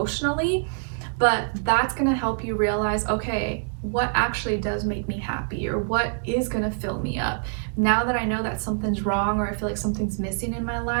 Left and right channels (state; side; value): silent; left; 62 dB below the other